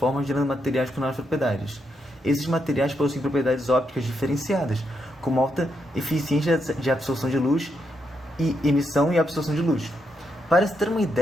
gerando materiais com novas propriedades. Esses materiais possuem propriedades ópticas diferenciadas, como alta eficiência de absorção de luz e emissão e absorção de luz. Para se ter uma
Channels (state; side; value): normal; both; correlation 0.81